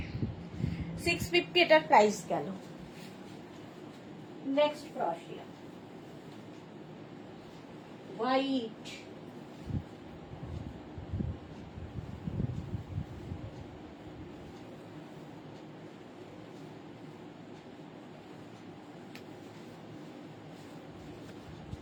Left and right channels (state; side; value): identical; both; correlation 1.00